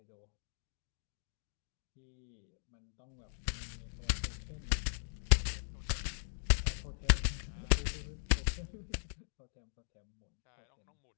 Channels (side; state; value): right; silent; digital silence